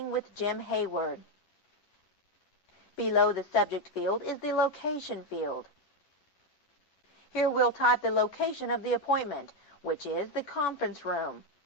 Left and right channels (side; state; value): right; late; 11 ms